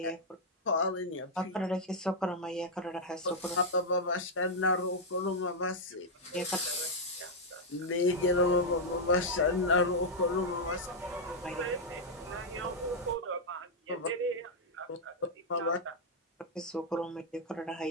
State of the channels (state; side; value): normal; both; correlation -0.02